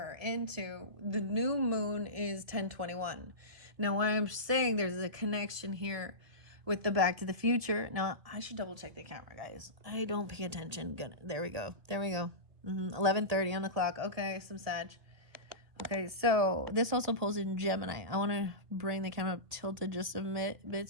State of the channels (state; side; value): late; left; 2.1 ms